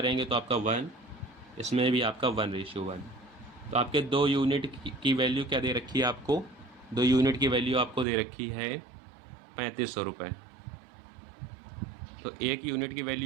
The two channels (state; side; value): drops out; left; at 8.1 s